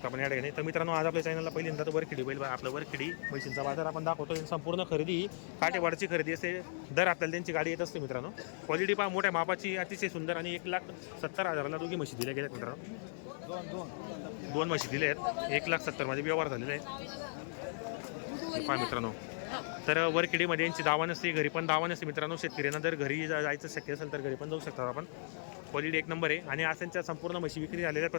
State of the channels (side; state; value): right; silent; 54 dB below the other